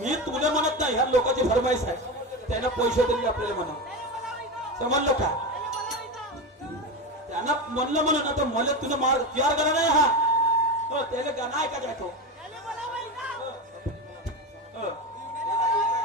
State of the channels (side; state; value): both; normal; correlation 0.19